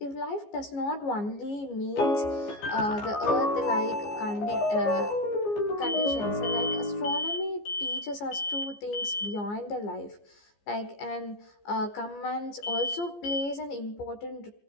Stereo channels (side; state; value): right; late; 14 ms